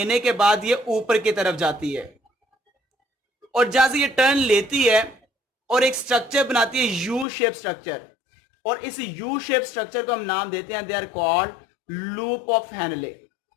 के बाद ये ऊपर की तरफ जाती है, और जहां से ये टर्न लेती है और एक स्ट्रक्चर बनाती है यू शेप स्ट्रक्चर, और इस यू शेप स्ट्रक्चर को हम नाम देते हैं, they are called loop of Henle.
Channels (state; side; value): drops out; right; at 7.2 s